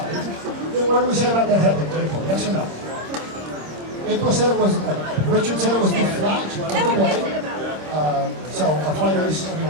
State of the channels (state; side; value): late; left; 26 ms